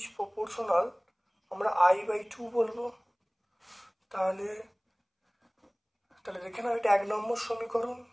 প্রপোর্শনাল আমরা I/2 বলবো। তাহলে দেখে নাও, এটা 1 নম্বর সমীকরণ,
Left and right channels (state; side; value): identical; both; correlation 1.00